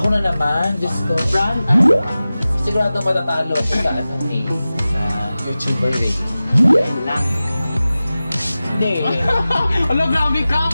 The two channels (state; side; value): inverted; both; correlation -0.96